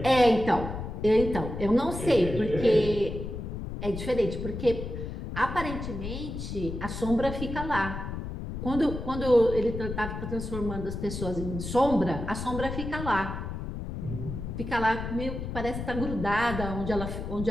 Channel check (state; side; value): noise; left; rumble, 6 dB below the sound